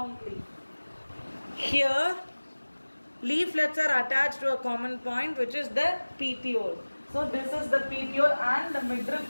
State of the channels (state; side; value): inverted; both; correlation -1.00